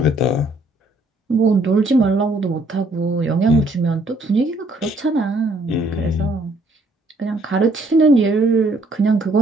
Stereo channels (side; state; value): both; normal; correlation 0.66